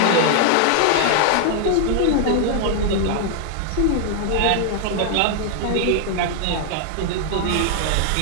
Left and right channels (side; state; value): both; different; correlation 0.00